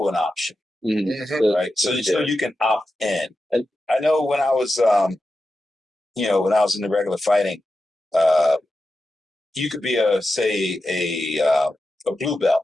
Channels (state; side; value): normal; both; correlation 0.91